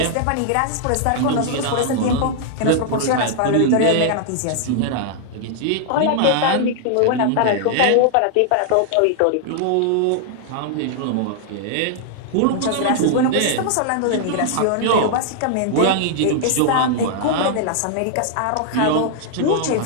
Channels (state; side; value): different; both; correlation -0.01